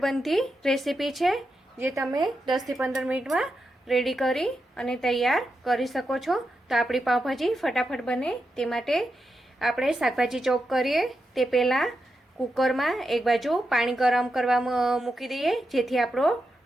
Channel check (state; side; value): normal; both; correlation 0.87